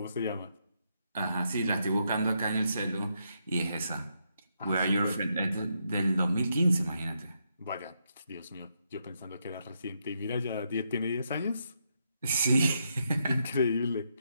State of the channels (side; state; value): both; inverted; correlation -0.80